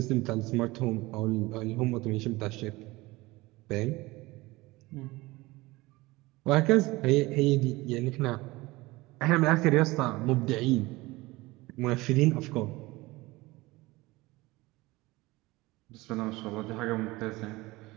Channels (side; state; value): left; quieter; 20.9 dB